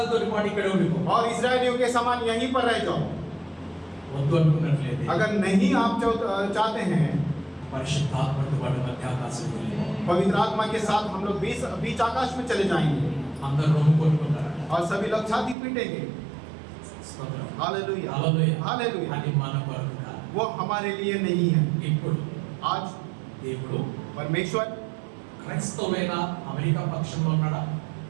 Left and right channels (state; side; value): drops out; left; at 15.6 s